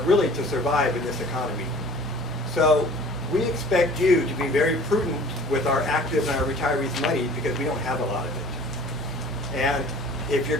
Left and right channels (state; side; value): normal; both; correlation 0.47